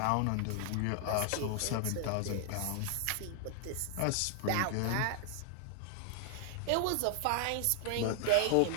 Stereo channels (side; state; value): both; different; correlation 0.00